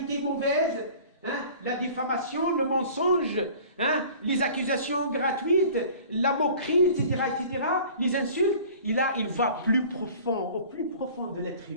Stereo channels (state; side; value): inverted; both; correlation -0.46